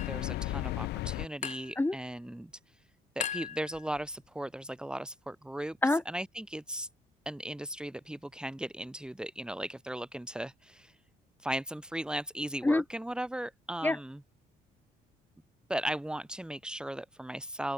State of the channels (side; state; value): both; normal; correlation 0.77